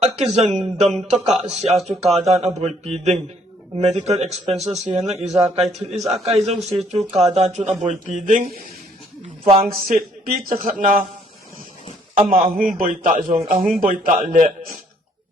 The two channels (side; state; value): both; normal; correlation 0.64